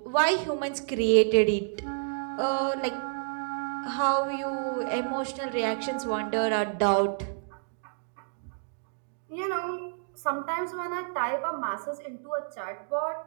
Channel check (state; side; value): silent; left; digital silence